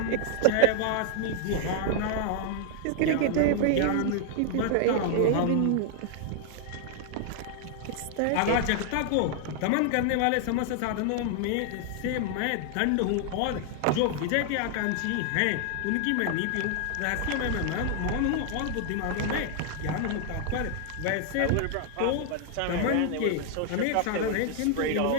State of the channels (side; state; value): both; different; correlation 0.00